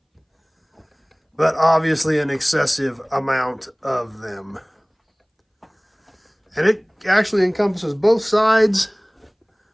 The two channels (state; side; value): identical; both; correlation 1.00